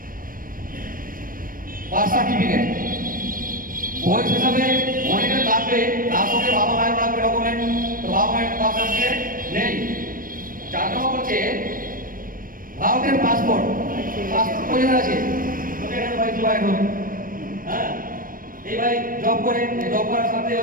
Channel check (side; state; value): left; late; 0.41 ms